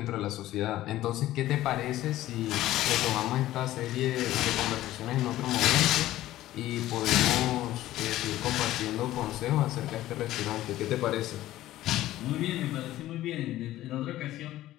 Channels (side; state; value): right; quieter; 14.8 dB